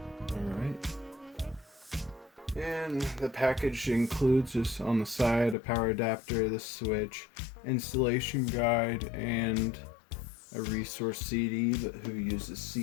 Alright. And the package includes, just on the side, a power adapter, the switch, installation guide, and a resource CD, but who uses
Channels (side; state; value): right; drops out; at 5.6 s